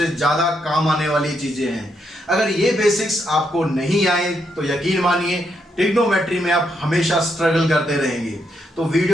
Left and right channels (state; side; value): normal; both; correlation 0.79